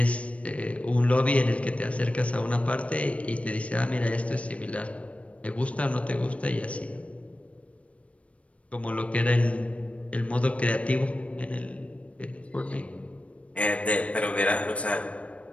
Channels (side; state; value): right; late; 0.063 ms